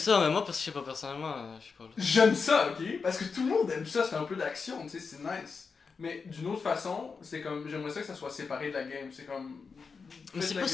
mais moi, parce que je sais pas, personnellement, je sais pas. J'aime ça, ok? Parce que tout le monde aime ça, c'est un peu d'action, tu sais, c'est nice. Mais d'une autre façon, c'est comme, j'aimerais ça que ça soit séparé de la game, c'est comme... Mais c'est pas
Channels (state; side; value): quieter; right; 5.1 dB